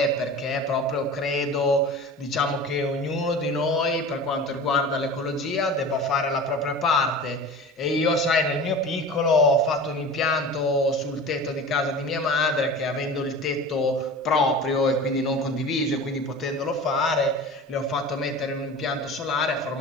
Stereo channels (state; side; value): normal; both; correlation 0.35